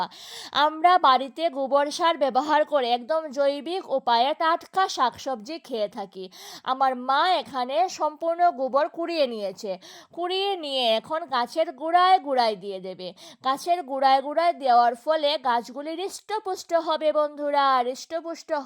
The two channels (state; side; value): identical; both; correlation 1.00